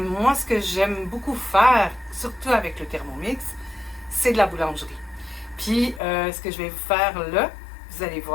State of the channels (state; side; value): drops out; right; at 6.0 s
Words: moi, ce que j'aime beaucoup faire, surtout avec le Thermomix, c'est de la boulangerie. Puis, ce que je vais vous faire là, vous allez